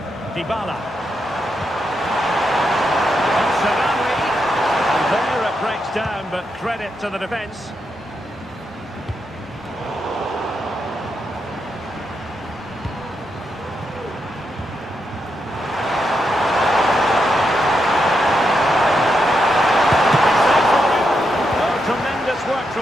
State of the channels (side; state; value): both; normal; correlation 0.83